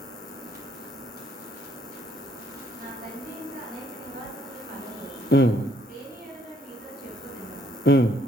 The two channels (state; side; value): normal; both; correlation 0.66